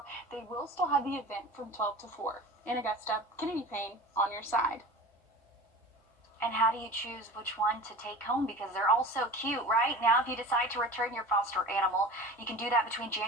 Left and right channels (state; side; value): normal; both; correlation 0.36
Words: they will still have the event from 12 to 4. In Augusta, Kennedy Payne on your side. And how do you choose which one to take home? Because they're all so cute, right? Now, if you decide to return your foster animal, you can do that between